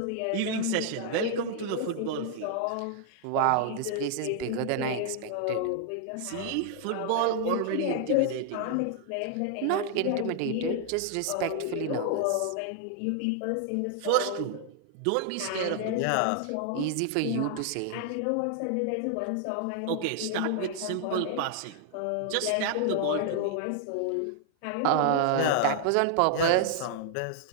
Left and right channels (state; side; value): different; both; correlation 0.00